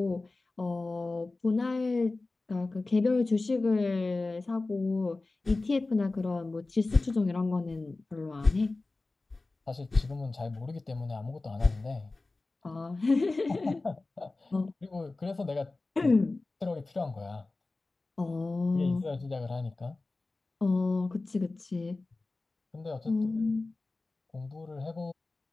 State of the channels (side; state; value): right; quieter; 3.3 dB